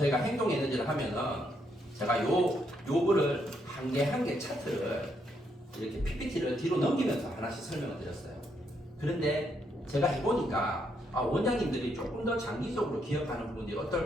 행동 에너지를 하면은 제가 요거를 한 개 한 개 차트를 이렇게 PPT를 뒤로 넘기면서 하나씩 설명을 드렸어요. 그런데 제가 해보니까 원장님들이 조금 더 장기적으로 기억하는 부분들이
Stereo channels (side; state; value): both; normal; correlation 0.76